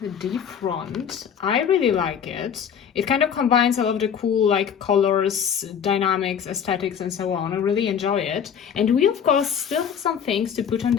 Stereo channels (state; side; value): quieter; right; 7.9 dB